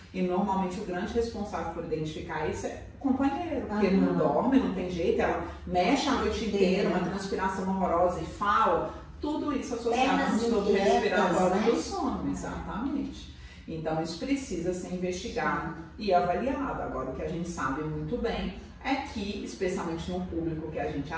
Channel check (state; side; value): identical; both; correlation 1.00